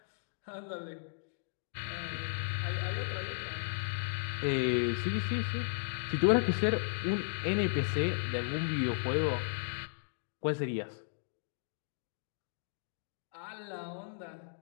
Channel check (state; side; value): silent; right; digital silence